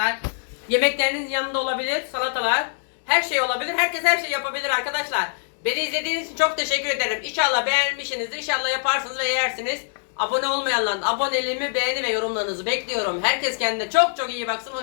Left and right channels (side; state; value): right; silent; 63 dB below the other